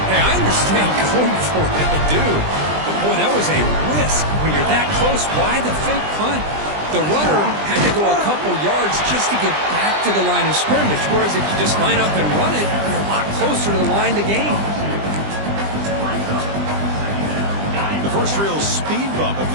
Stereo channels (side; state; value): left; late; 20 ms